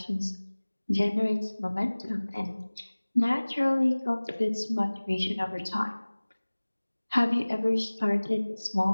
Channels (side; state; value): both; inverted; correlation -1.00